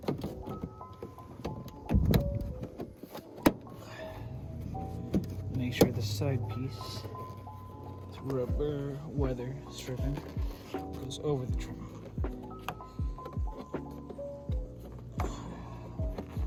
Make sure the side piece, this rubber weather stripping, goes over the trim.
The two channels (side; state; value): both; identical; correlation 1.00